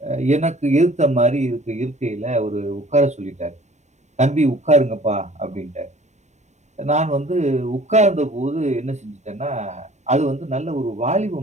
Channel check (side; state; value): left; late; 0.34 ms